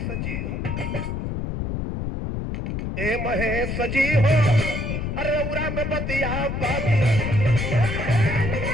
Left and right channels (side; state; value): left; noise; rumble, 3 dB below the sound